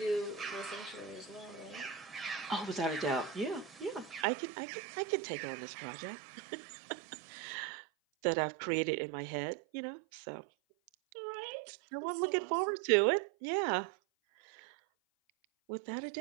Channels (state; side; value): drops out; left; at 4.2 s